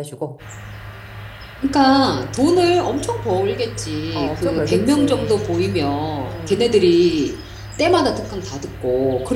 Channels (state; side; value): identical; both; correlation 1.00